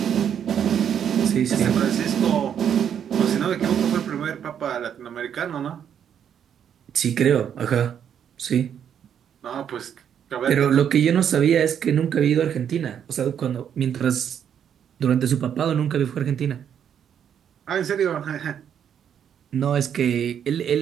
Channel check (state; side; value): quieter; left; 8.7 dB